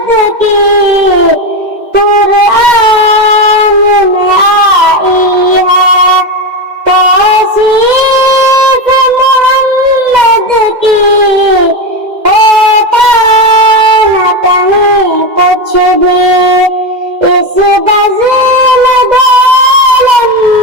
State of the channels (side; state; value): left; late; 2.0 ms